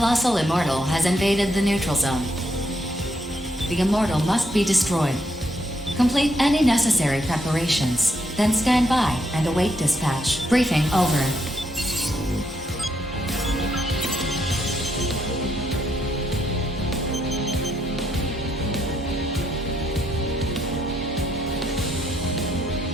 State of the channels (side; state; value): both; normal; correlation 0.76